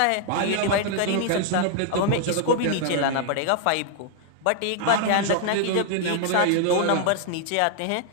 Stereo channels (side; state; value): both; different; correlation 0.00